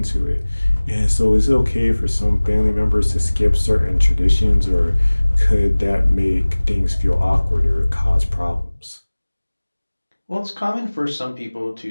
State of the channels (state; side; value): inverted; both; correlation -1.00